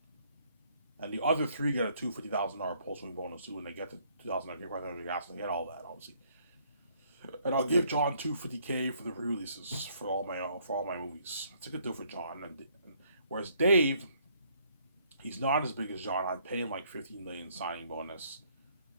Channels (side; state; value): both; inverted; correlation -0.66